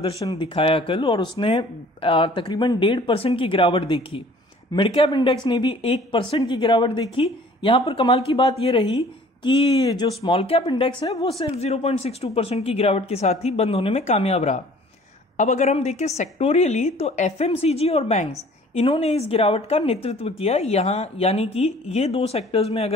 दिखाया कल और उसने तकरीबन 1.5% की गिरावट देखी। मिड कैप इंडेक्स ने भी 1% की गिरावट देखी। यहां पर कमाल की बात यह रही कि जो स्मॉल कैप इंडेक्स है वो सिर्फ 0.62% की गिरावट के साथ ही बंद होने में कामयाब रहा। अब अगर हम देखें सेक्टोरियली तो एफएमसीजी और बैंक्स, इन्होंने इस गिरावट का नेतृत्व किया यहां, यानी कि ये दो सेक्टर्स में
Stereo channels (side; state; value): both; normal; correlation 0.52